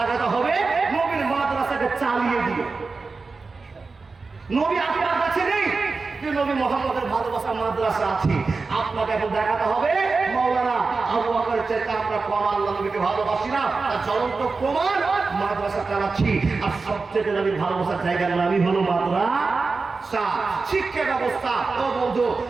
হবে নবীর মাদ্রাসাকে চালিয়ে দিয়ে। নবী আপনার কাছে নেই, যে নবী মুহাম্মদের ভালোবাসার মাদ্রাসা আছে। আপনাকে এখন দেখাতে হবে মাওলানা আবু বকর চাইতে আমরা কম আল্লাহ নবীকে ভালোবাসি না, তার জ্বলন্ত প্রমাণ মাদ্রাসা চালাচ্ছি। আর সবচেয়ে নবীর ভালোবাসার জায়গার নামই হলো মাদ্রাসা, শিক্ষা ব্যবস্থা। ও বন্ধু,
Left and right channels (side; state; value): left; quieter; 4.2 dB